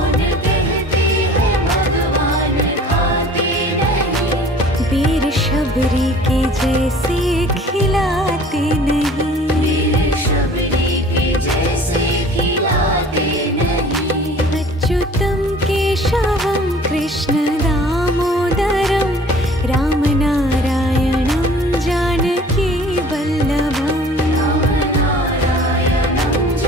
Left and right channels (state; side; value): normal; both; correlation 0.48